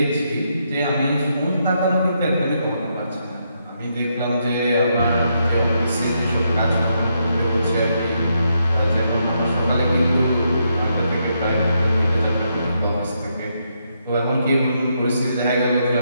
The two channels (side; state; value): both; inverted; correlation -0.79